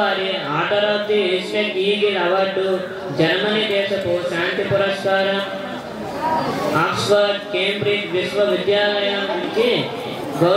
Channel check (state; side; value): identical; both; correlation 1.00